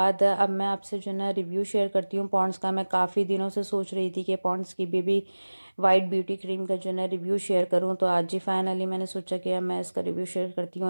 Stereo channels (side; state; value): both; inverted; correlation -1.00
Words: अब मैं आपसे जो है ना रिव्यू शेयर करती हूँ पॉन्ड्स का। मैं काफ़ी दिनों से सोच रही थी कि पॉन्ड्स की बेबी वाइट ब्यूटी क्रीम का जो है ना रिव्यू शेयर करूँ, तो आज जी फाइनली मैंने सोचा कि अब मैं इसका रिव्यू शेयर करती